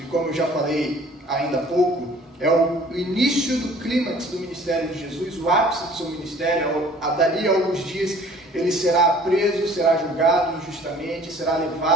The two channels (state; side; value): normal; both; correlation 0.52